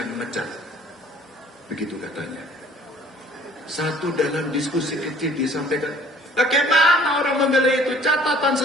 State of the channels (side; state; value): both; normal; correlation 0.53